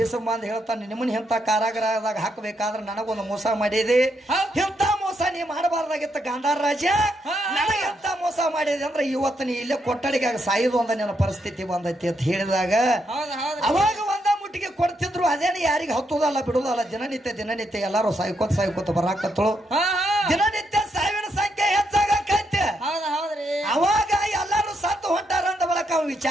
ಬಂದ್ ಹೇಳ್ತಾನೆ, ನಿಮ್ಮನ್ನ ಇಂಥ ಕಾರಾಗೃಹದಾಗ ಹಾಕಬೇಕಾದ್ರೆ ನನಗೊಂದು ಮೋಸ ಮಾಡಿದೆ, ಇಂಥ ಮೋಸ ನೀ ಮಾಡಬಾರ್ದಾಗಿತ್ತ ಗಾಂಧಾರ ರಾಜ. ನನಗೆ ಎಂತ ಮೋಸ ಮಾಡಿದೆ ಅಂದ್ರೆ ಇವತ್ತು ನೀ ಇಲ್ಲೇ ಕೊಠಡಿಗೆ ಸಾಯುದು ಒಂದ ನನ್ನ ಪರಿಸ್ಥಿತಿ ಬಂದೈತಿ ಅಂತ ಹೇಳಿದಾಗ ಅವಾಗ ಒಂದ ಮುಟ್ಟಿಗೆ ಕೊಡ್ತಿದ್ರು. ಅದೇನು ಯಾರಿಗೆ ಹತ್ತುದಲ್ಲ ಬಿಡುದಲ್ಲ, ದಿನನಿತ್ಯ ಎಲ್ಲಾರು ಸಾಯ್ಕೋತ ಬರಾಕತ್ತಳು. ದಿನನಿತ್ಯ ಸಾವಿನ ಸಂಖ್ಯೆ ಹೆಚ್ಚಾಗೈತೆ. ಅವಾಗ ಎಲ್ಲಾರು ಸತ್ತು ಹೊಂಟಾರ ಅಂದ ಬಳಕ ಅವ್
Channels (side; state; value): both; normal; correlation 0.79